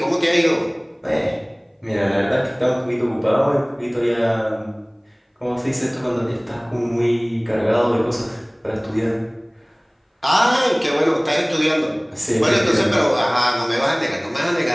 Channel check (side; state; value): both; identical; correlation 1.00